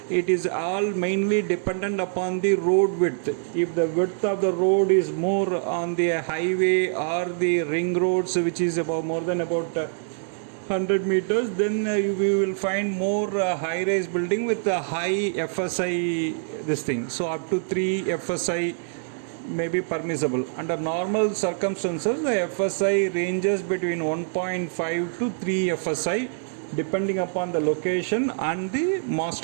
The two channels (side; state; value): left; silent; 61 dB below the other